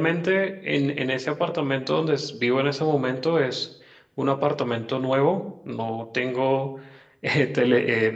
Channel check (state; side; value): identical; both; correlation 1.00